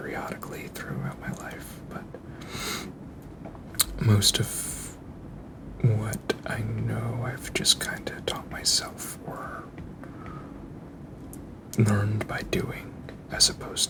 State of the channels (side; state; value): both; identical; correlation 1.00